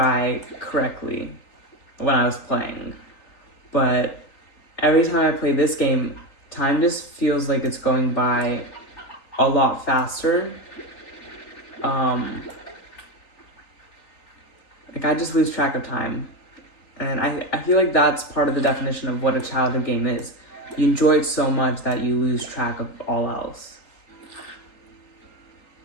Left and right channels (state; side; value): late; right; 3.9 ms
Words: correctly when I was playing. But every time I play this game, time just feels like it's going by a lot faster. Like, I just lose track of time. And I feel like that's part of the definition of what a childhood game is. You enjoy it so much that you lose track of all else.